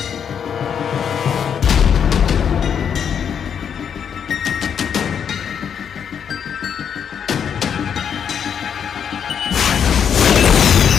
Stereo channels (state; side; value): quieter; right; 7.8 dB